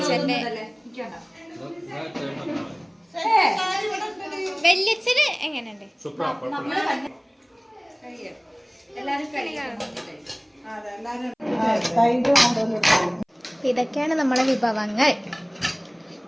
വല്യച്ഛന് എങ്ങനെയുണ്ട്? ഇതൊക്കെയാണ് നമ്മളെ വിഭവങ്ങൾ.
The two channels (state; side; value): identical; both; correlation 1.00